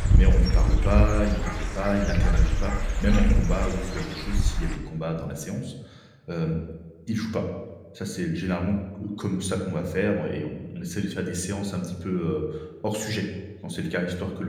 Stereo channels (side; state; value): both; identical; correlation 1.00